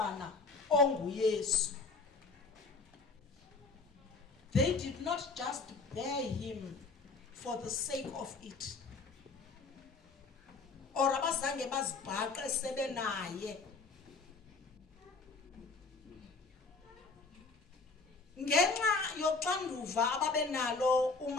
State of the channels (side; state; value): right; quieter; 4.1 dB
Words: onguYesu. They did not just bear him for the sake of it, or abazange bazibhaqe sebenaye. Ngenxa yoxanduva ababenalo